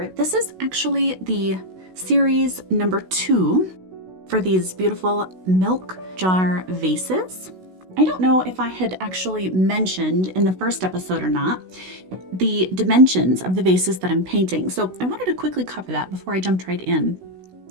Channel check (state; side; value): late; left; 16 ms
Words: this is actually the series number 2 for these beautiful milk jar vases. I don't know if I had actually mentioned in the first episode or not the dimensions of the vases that I'm painting, so I wanted to quickly cover that before I jumped right in.